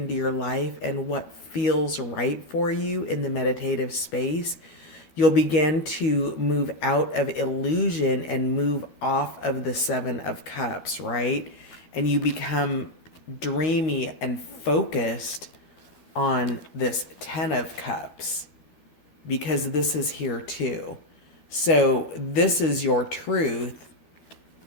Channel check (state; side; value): late; right; 12 ms